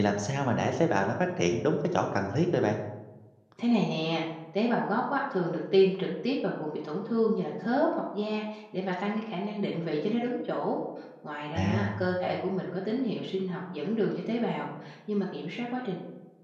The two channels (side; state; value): both; identical; correlation 1.00